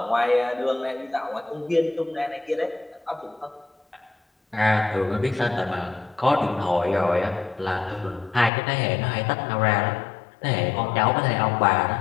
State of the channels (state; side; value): drops out; right; at 8.5 s